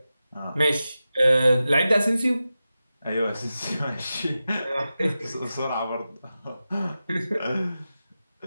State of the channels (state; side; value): inverted; both; correlation -0.93